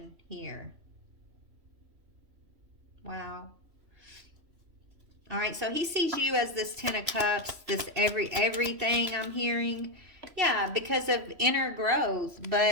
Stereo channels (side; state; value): left; late; 3.1 ms